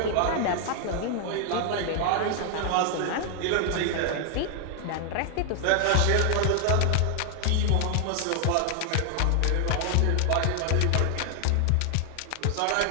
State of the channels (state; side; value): different; both; correlation 0.00